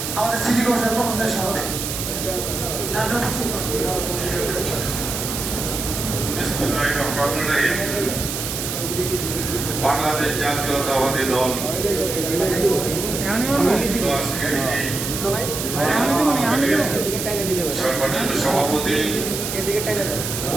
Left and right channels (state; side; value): noise; right; hiss, 4 dB below the sound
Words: আমাদের সিটি কর্পোরেশন কর্মচারী সমাদায়। বিসমিল্লাহির রহমানির রহিম। বাংলাদেশ জাতীয়তাবাদী দল আজকের এই সম্মানিত সভাপতি